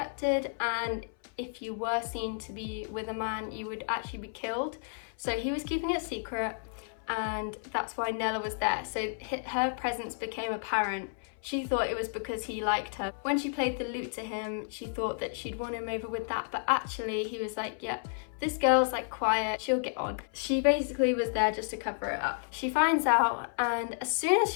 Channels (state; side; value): silent; right; 57 dB below the other